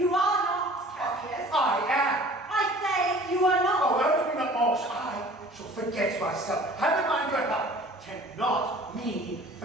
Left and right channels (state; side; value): normal; both; correlation 0.48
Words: are not, Cassius. I am. I say you are not. Oh, urge me not more. I shall forget myself. Have in mind your help. Cannot mean